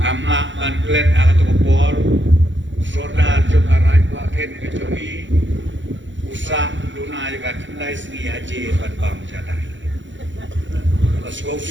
ban klet ka tokopor sordar jong arai pa ken ke jemni usah duna juga kendai seni haji ban bam jadai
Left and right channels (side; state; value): left; late; 0.54 ms